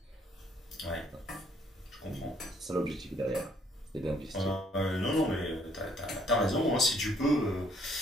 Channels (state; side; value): normal; both; correlation 0.65